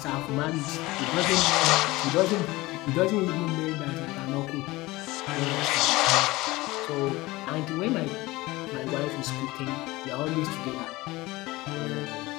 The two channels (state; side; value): quieter; right; 20.2 dB